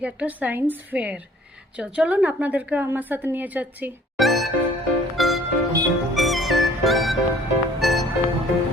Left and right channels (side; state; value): both; normal; correlation 0.54